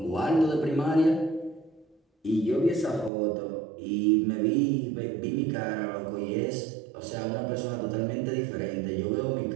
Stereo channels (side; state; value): left; drops out; at 3.1 s